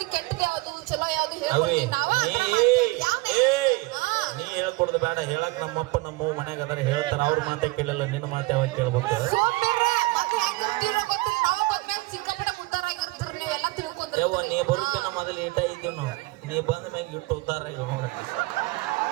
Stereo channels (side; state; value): left; quieter; 22.7 dB